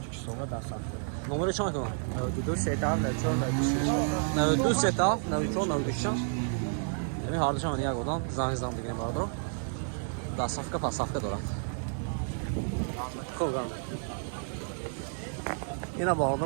da sattı. نمره چند کنم 92 sedan ve çor 96. 92 ستا 94 96 یعنی هر دوشم یک آدم زنگ زدم بگیریم باردار ده صفحه پس صفحه دارد خوب گرم اینا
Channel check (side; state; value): left; silent; 57 dB below the other